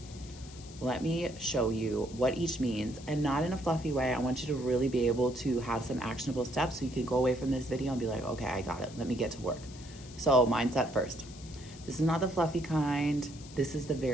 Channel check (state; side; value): noise; left; hiss, 19 dB below the sound